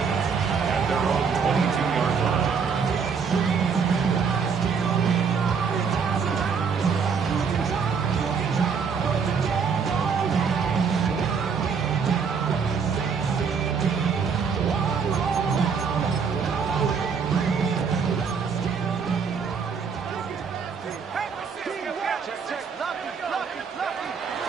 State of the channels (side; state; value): left; quieter; 6.0 dB